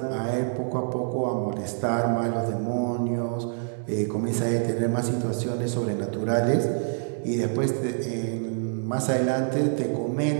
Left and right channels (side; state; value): left; silent; digital silence